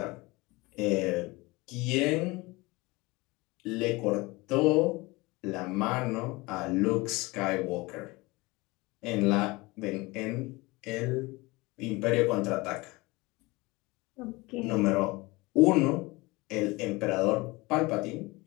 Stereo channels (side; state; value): right; quieter; 23.2 dB